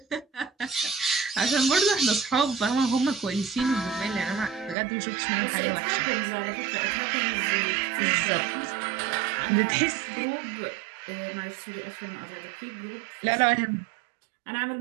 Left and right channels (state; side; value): drops out; left; at 4.8 s